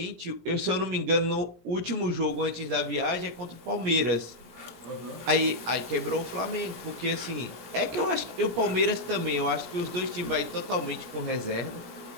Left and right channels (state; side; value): late; left; 17 ms